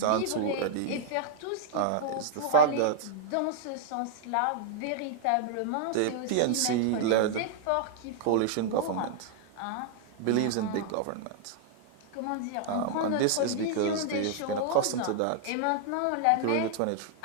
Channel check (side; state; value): both; different; correlation -0.01